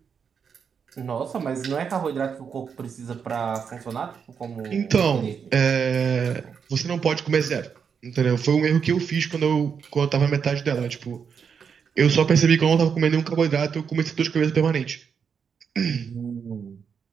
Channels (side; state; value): left; quieter; 6.6 dB